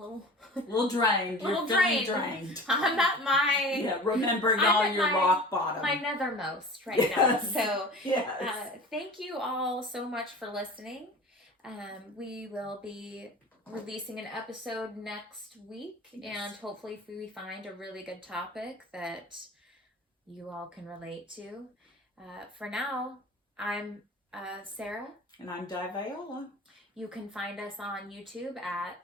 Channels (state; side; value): normal; both; correlation 0.38